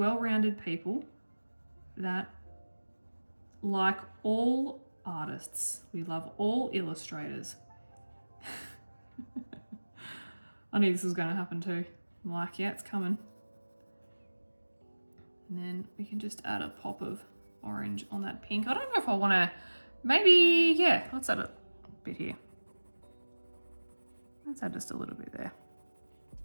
people that like all artists. We love all illustrators. I knew this was going to happen too. I'm like, yeah, it's coming. And then we can just add a pop of orange on that pink. I don't know if I want to, maybe, yeah, let's add a bit here. Let's add just a little bit there.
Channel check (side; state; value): both; inverted; correlation -1.00